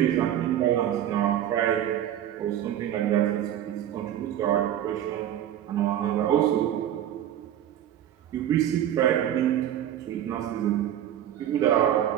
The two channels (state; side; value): quieter; left; 11.2 dB